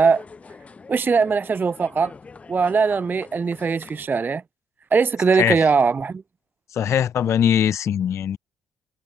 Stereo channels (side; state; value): both; normal; correlation 0.75